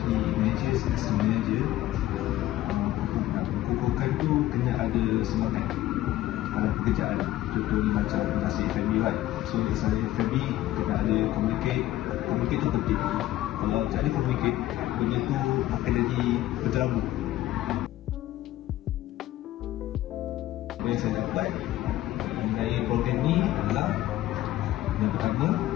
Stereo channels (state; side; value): quieter; right; 14.7 dB